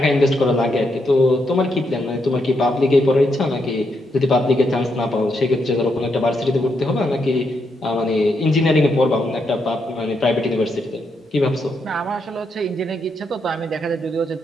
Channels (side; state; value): both; normal; correlation 0.80